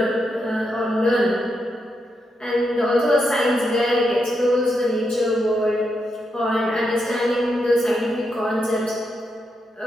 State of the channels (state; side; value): normal; both; correlation 0.83